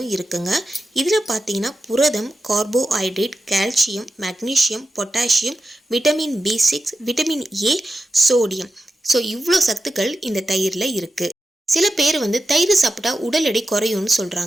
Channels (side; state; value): both; normal; correlation 0.91